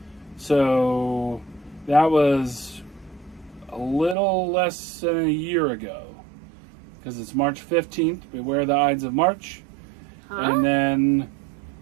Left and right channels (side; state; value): left; drops out; at 4.2 s